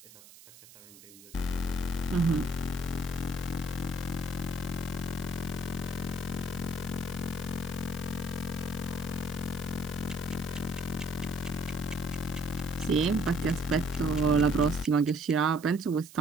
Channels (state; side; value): noise; right; hiss, 20 dB below the sound